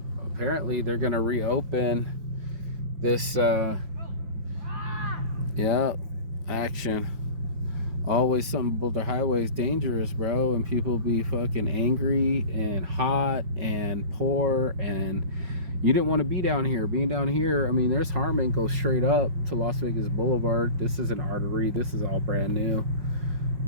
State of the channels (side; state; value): left; late; 5.5 ms